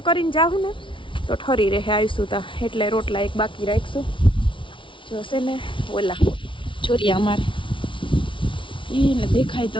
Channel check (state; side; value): late; right; 0.25 ms